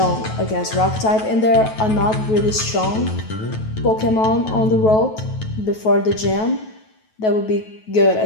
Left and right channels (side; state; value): right; late; 9.2 ms